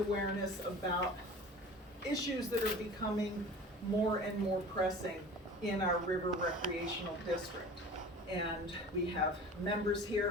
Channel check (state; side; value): normal; both; correlation 0.40